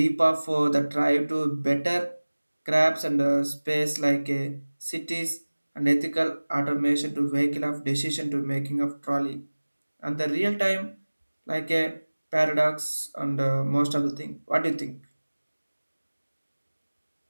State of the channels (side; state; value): both; inverted; correlation -1.00